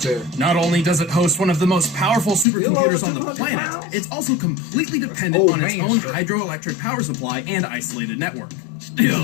up there. Not only does it host one of the most powerful supercomputers on the 200 planet, pounds? it's also completely dependent old on its man own shit. hydroelectric power supply and isolated network.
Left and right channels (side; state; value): right; drops out; at 2.5 s